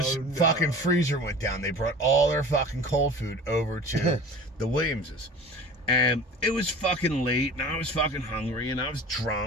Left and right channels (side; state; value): both; normal; correlation 0.39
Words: fucking freezer went down. They brought all their fucking cold food over to the Williamses. And it was fucking late, and I was fucking hungry, and I was